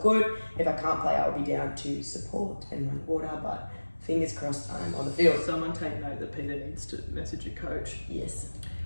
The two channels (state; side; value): inverted; both; correlation -1.00